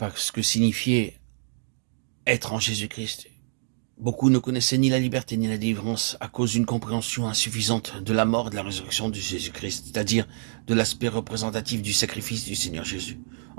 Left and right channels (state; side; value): silent; left; digital silence